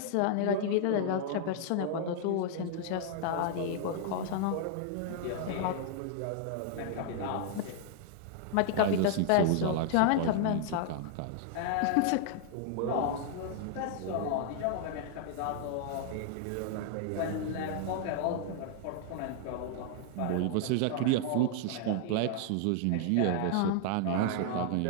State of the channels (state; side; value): different; both; correlation -0.01